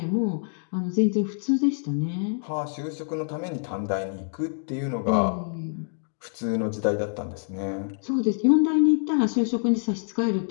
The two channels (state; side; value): silent; right; digital silence